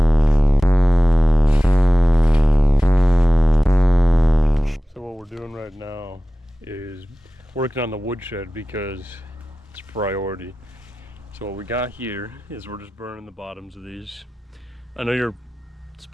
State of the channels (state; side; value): normal; both; correlation 0.96